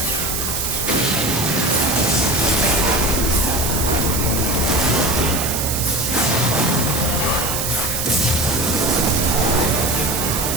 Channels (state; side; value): noise; right; hiss, 2 dB below the sound